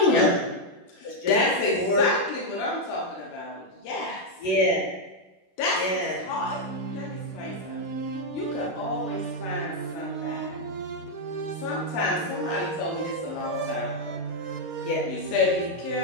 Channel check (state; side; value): late; right; 11 ms